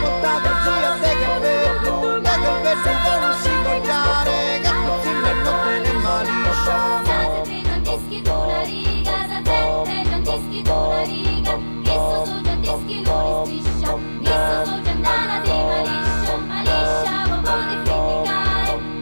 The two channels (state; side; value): inverted; both; correlation -1.00